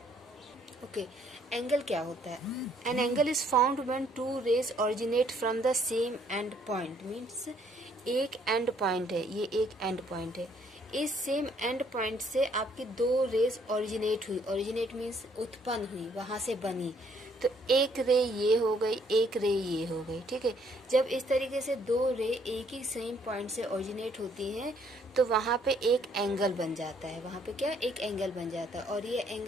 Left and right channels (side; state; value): both; normal; correlation 0.66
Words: ओके, एंगल क्या होता है? An angle is found when 2 rays originate from the same end point. Means एक एंड पॉइंट है, ये एक एंड पॉइंट है, इस सेम एंड पॉइंट से आपकी 2 रेज ऑरिजिनेट हुई। ऑरिजिनेट मीन्स उत्पन्न हुई, वहां से बनी। तो एक रे ये हो गई, एक रे ये हो गई, ठीक है। जब इस तरीके से 2 रे एक ही सेम पॉइंट से ऑरिजिनेट होती हैं तो वहां पे एक एंगल बन जाता है। वहां पे क्या? एक एंगल बन जाता है। और ये